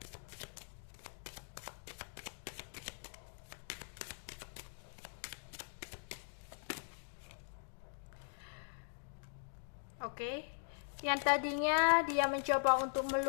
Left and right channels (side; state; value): right; silent; digital silence